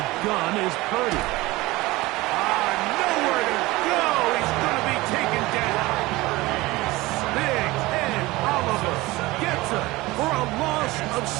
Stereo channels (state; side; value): quieter; left; 20.2 dB